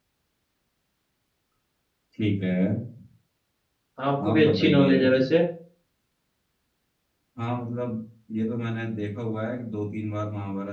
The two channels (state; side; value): identical; both; correlation 1.00